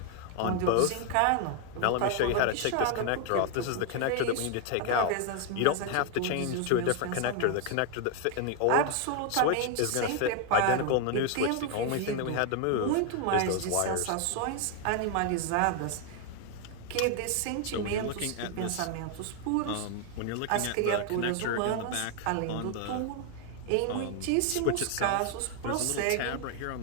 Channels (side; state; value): both; different; correlation 0.00